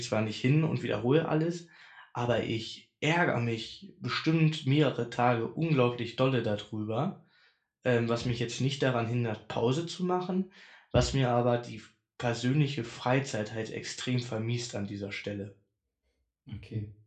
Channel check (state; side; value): identical; both; correlation 1.00